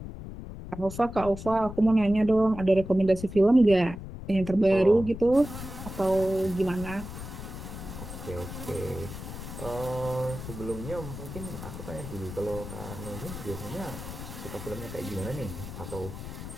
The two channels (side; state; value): left; noise; rumble, 10 dB below the sound